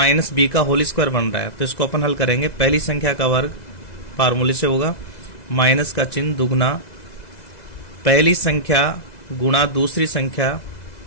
बी का होल स्क्वायर बन रहा है। तो इसको अपन हल करेंगे। पहली संख्या का वर्ग फार्मूले से होगा माइनस का चिन्ह दुगना पहली संख्या गुणा दूसरी संख्या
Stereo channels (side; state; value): right; late; 2.0 ms